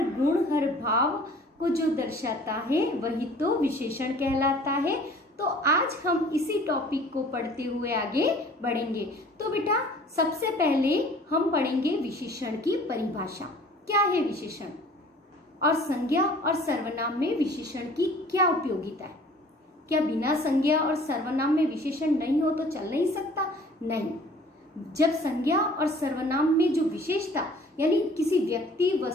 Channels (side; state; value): both; normal; correlation 0.50